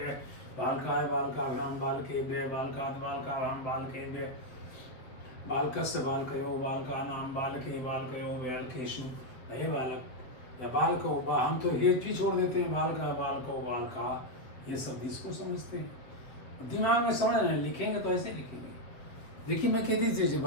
बालकाय बालकाभ्याम बालकेभ्य बालकात् बालकाभ्याम बालकेभ्य बालकस्य बालकयो बालकानां बालके बालकयो बालकेषु। हे बालक या बालको, हम तो ये भी छोड़ देते हैं, बालका बालको बालका, ये सब इसको समझते हैं। दिमाग में समझ रहे हैं, लिखेंगे तो ऐसे लिखेंगे। देखिए मैं कह दीजिए,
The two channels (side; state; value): right; late; 7.7 ms